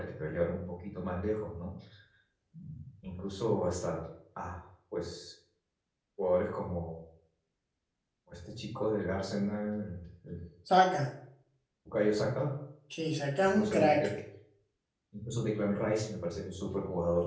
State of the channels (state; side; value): identical; both; correlation 1.00